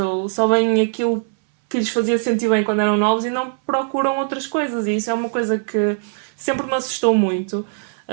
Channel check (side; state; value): left; silent; 66 dB below the other